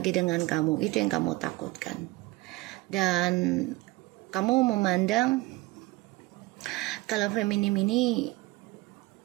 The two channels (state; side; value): quieter; left; 20.8 dB